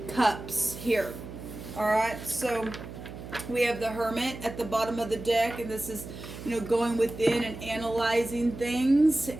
cups here. All right, so we have the Hermit at the bottom of the deck, and this is, going within and analyzing things.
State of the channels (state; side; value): noise; right; hum, 12 dB below the sound